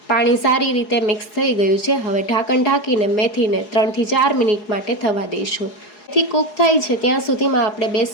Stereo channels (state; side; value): late; right; 4.7 ms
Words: પાણી સારી રીતે મિક્સ થઈ ગયું છે। હવે ઢાંકણ ઢાંકીને મેથીને 3 થી 4 મિનિટ માટે થવા દઈશું। મેથી કૂક થાય છે ત્યાં સુધીમાં આપણે